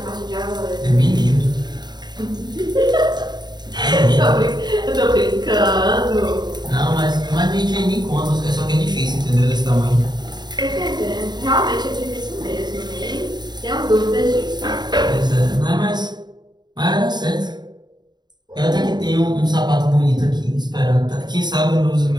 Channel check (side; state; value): left; late; 0.21 ms